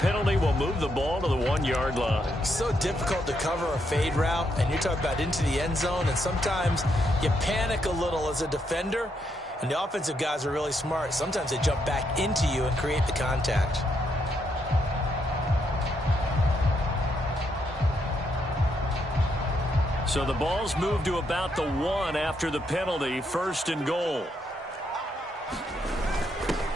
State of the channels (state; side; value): normal; both; correlation 0.78